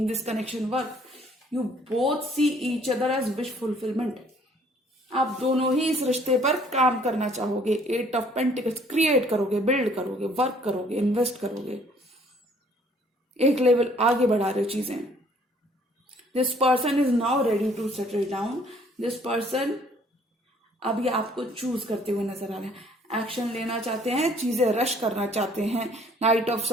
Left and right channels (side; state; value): both; normal; correlation 0.59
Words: this connection work. You both see each other as wish fulfillment. आप दोनों ही इस रिश्ते पर काम करना चाहोगे। 8 ऑफ पेंटिकल्स क्रिएट करोगे, बिल्ड करोगे, वर्क करोगे, इन्वेस्ट करोगे, एक लेवल आगे बढ़ा रहे हो चीजें। This person is now ready to settle down. This person अभी आपको चूज करते हुए नजर आ रहे हैं, एक्शन लेना चाहते हैं, चीजें रश करना चाहते हैं। नाइट ऑफ